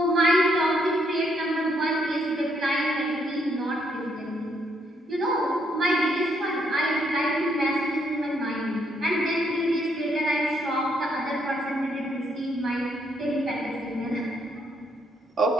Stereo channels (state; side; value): normal; both; correlation 0.73